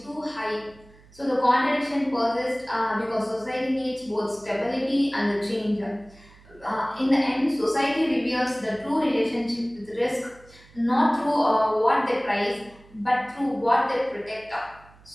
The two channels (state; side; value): noise; right; hum, 25 dB below the sound